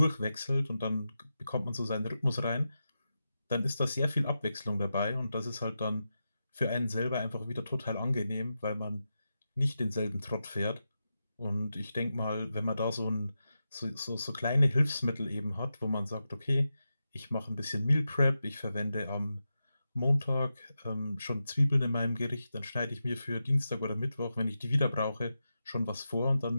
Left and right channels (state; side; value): inverted; both; correlation -0.90